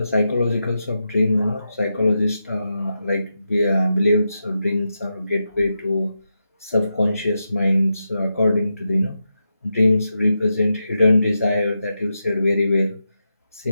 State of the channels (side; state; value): both; inverted; correlation -0.88